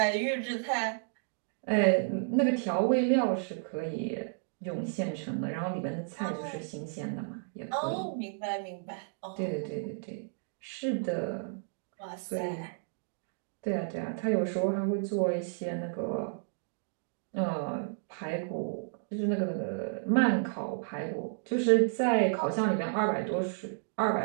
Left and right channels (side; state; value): left; silent; digital silence